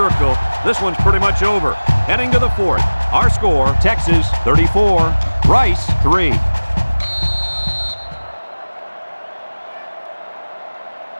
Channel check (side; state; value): both; inverted; correlation -1.00